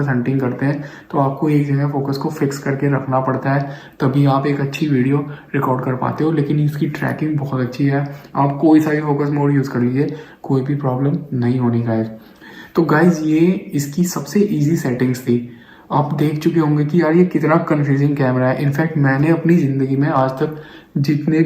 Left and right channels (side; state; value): both; identical; correlation 1.00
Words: हंटिंग करते हैं, तो आपको एक जगह फोकस को फिक्स करके रखना पड़ता है, तभी आप एक अच्छी वीडियो रिकॉर्ड कर पाते हो। लेकिन इसकी ट्रैकिंग बहुत अच्छी है, आप कोई सा भी फोकस मोड यूज़ कर लीजिए, कोई भी प्रॉब्लम नहीं होनी गाइज। तो गाइज ये इसकी सबसे ईजी सेटिंग्स थी। आप देख चुके होंगे कि यार ये कितना कंफ्यूजिंग कैमरा है। इनफैक्ट मैंने अपनी ज़िंदगी में आज तक जितने